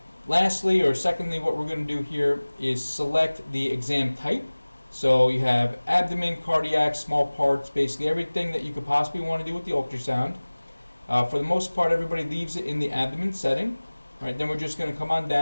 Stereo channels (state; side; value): inverted; both; correlation -1.00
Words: Lastly, or secondly, what we're going to do here is select the exam type. So you have abdomen, cardiac, small parts, basically everything that you could possibly want to do with the ultrasound. For the most part, everybody leaves it in the abdomen setting. Right, then we're just going to come on